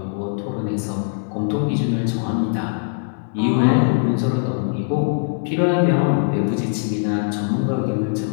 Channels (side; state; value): right; silent; 62 dB below the other